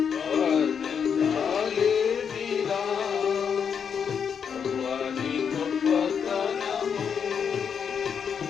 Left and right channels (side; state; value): right; quieter; 7.1 dB